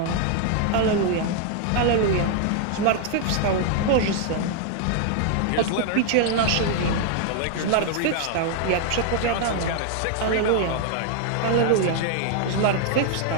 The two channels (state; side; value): different; both; correlation 0.00